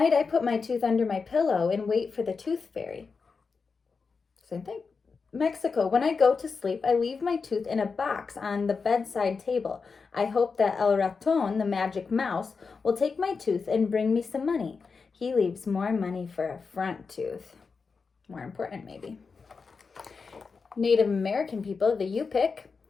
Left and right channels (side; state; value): right; quieter; 4.9 dB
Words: I put my tooth under my pillow and wait for the tooth fairy. Same thing. Mexico, when I go to sleep, I leave my tooth in a box on the bedside table. I hope that El Raton, the magic mouse, will take my tooth and bring me some money. He leaves more money for a front tooth. More important, maybe. Native American people, the Yupik.